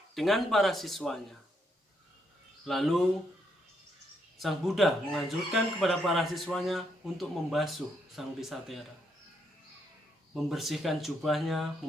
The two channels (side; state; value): both; normal; correlation 0.76